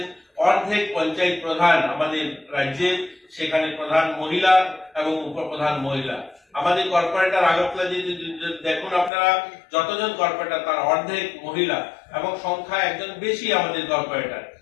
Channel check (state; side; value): drops out; right; at 9.1 s